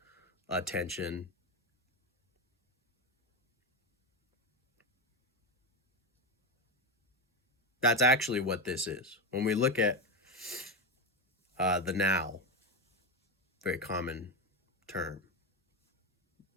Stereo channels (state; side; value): normal; both; correlation 0.13